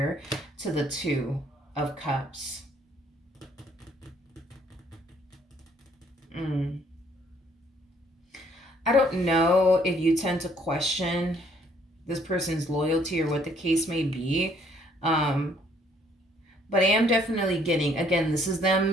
to the Two of Cups. I don't know if you tend to question this person's loyalty or what the case may be. But I am definitely getting, again, this is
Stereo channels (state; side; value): normal; both; correlation 0.64